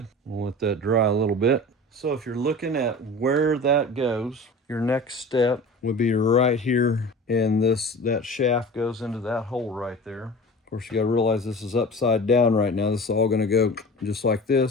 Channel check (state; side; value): normal; both; correlation 0.37